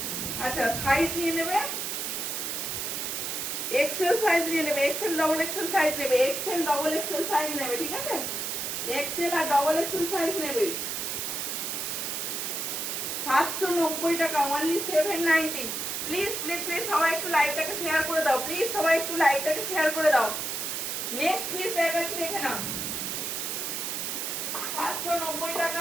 আচ্ছা, সাইজ নিয়ে নেবে, এক্সেল সাইজ নিয়ে নেবে, এক্সেল ডবল এক্সেল সাইজ নেবে, এক্সেল ডবল এক্সেল সাইজ নেবে, ঠিক আছে। এক্সেল আর ডবল এক্সেল সাইজ নেবে, 790 টাকা, অনলি 790। প্লিজ প্লিজ প্লিজ সবাই একটু লাইভটাকে শেয়ার করে দাও, প্লিজ সবাই একটু লাইভটাকে শেয়ার করে দাও। নেক্সট পিস দেখাচ্ছি, দেখে নাও, 790 টাকা,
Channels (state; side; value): noise; right; hiss, 2 dB below the sound